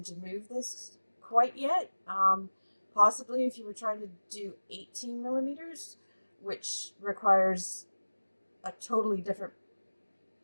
to move this quite yet. Possibly if you were trying to do 18 millimeters, which requires a totally different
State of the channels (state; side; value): inverted; both; correlation -1.00